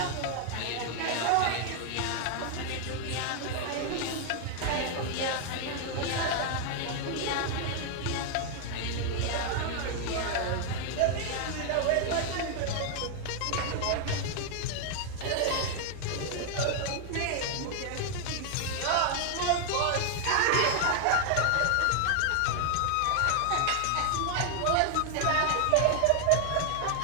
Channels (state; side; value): different; both; correlation 0.00